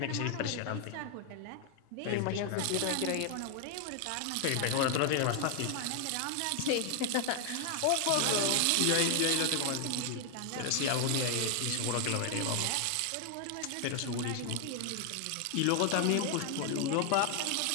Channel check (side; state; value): both; different; correlation 0.00